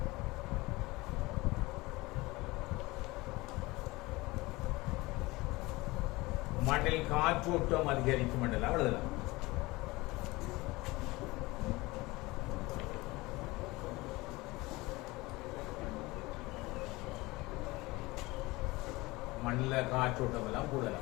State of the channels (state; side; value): quieter; right; 21.7 dB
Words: மண்ணில் காற்றோட்டம் அதிகரிக்கும் என்றெல்லாம் எழுதலாம். மண்ணில் காற்றோட்டம் எல்லாம்